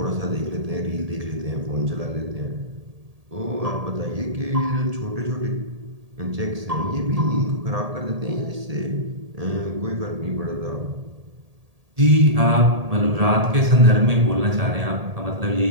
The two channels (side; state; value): left; late; 1.8 ms